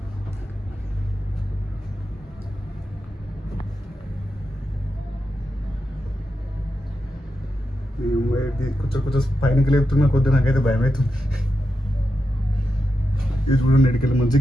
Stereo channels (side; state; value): both; normal; correlation 0.88